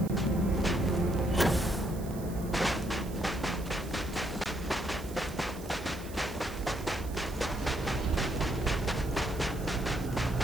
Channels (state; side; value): noise; right; hiss, 17 dB below the sound